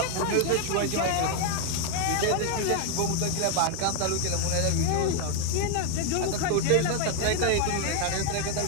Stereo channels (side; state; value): both; different; correlation 0.01